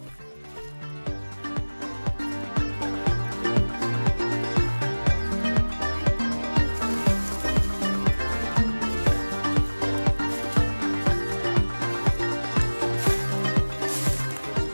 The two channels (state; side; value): inverted; both; correlation -1.00